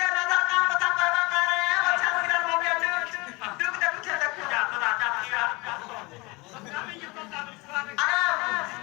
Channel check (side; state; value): right; quieter; 25.4 dB